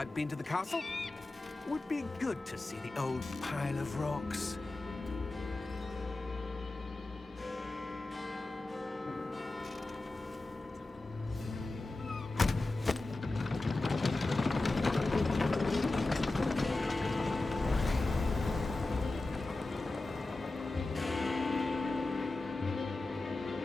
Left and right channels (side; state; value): right; quieter; 3.0 dB